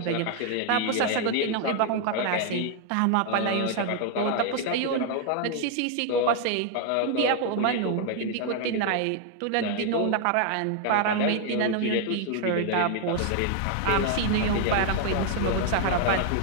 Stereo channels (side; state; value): both; different; correlation 0.00